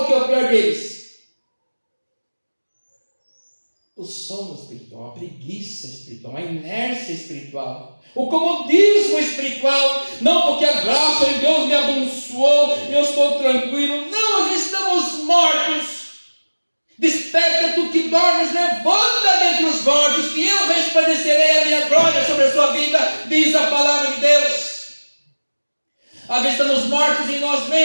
que é o pior deles. o sono espiritual, a preguiça espiritual, a inércia espiritual, o comodismo espiritual, não porque a graça de Deus me abençoou e eu estou tranquilo, não, nós estamos mortos. Desperta tu que dormes, levanta dentre os mortos, que eu resplandecerei a minha glória sobre a sua vida, diz a palavra de Deus. Às vezes estamos mortos em nós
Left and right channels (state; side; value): inverted; both; correlation -1.00